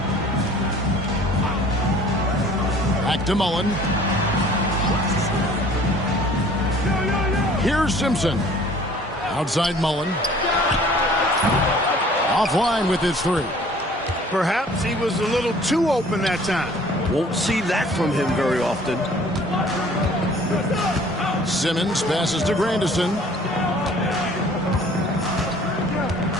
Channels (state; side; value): normal; both; correlation 0.52